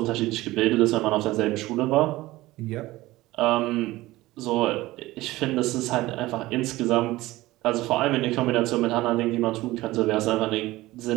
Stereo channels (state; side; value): quieter; left; 18.2 dB